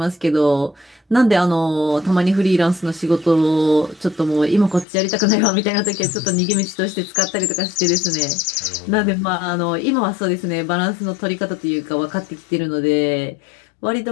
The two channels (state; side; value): drops out; right; at 4.9 s